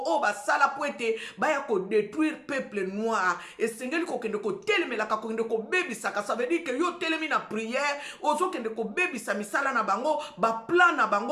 oh ba sala poete, ba ya ko détruire peuple noir. Et sengeli ko kende ko telemela ka ko kende ko bebisaka, ça veut dire que yo telemi na prière, ozo kende ko bebisa misala na bango, ba plan na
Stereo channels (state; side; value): identical; both; correlation 1.00